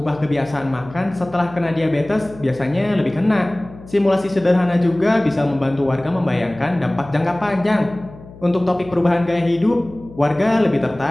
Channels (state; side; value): noise; left; hum, 19 dB below the sound